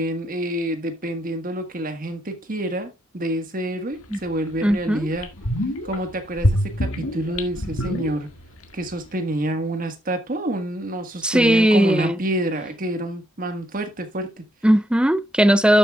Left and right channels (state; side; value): normal; both; correlation 0.76